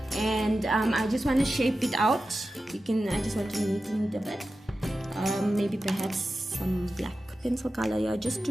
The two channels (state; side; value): normal; both; correlation 0.93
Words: and I just want to shape it out. I just want to neaten it a bit. Maybe perhaps some black pencil color here, just